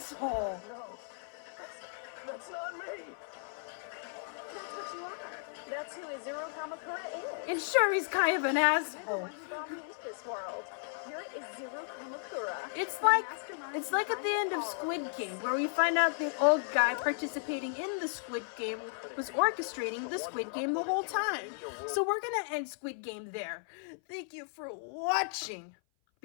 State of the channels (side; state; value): right; silent; 55 dB below the other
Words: No, that's not me. That's what you are. That's who Izuru Kamukura is. And sure, he's kind of an You're the asshole. one who brought me into this world. You're Izuru Kamukura. It's the like mastermind at the end of behind all Squid this. Game, where we find out the old guy participating in the Squid Game was orchestrating the Squid Game the whole time. So we're gonna end Squid Game there. Thank you for watching.